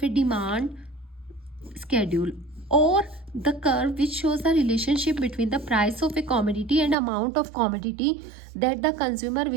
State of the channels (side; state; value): left; drops out; at 7.0 s